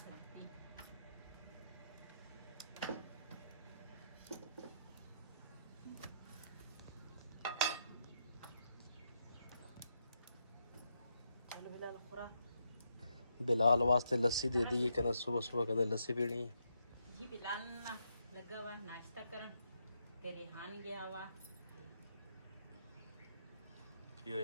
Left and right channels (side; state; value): both; inverted; correlation -0.80